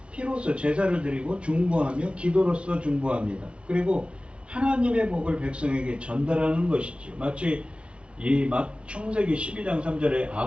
피로써 제사를 드리고 중보하며 기도로서 중보합니다. 그리고 하나님의 복을 백성에게 전달하는 것이지요. 마치 이 창세기 12장 3절에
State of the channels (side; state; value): left; late; 0.059 ms